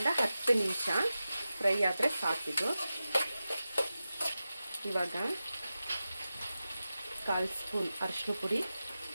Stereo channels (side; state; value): both; inverted; correlation -0.93